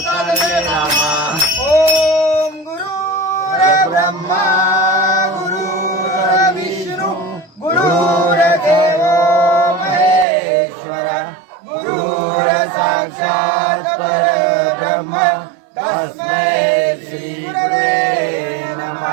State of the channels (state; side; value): drops out; left; at 10.2 s